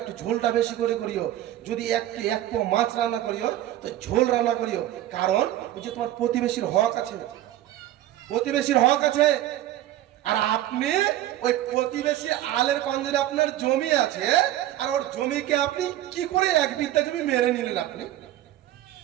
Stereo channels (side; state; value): left; quieter; 13.5 dB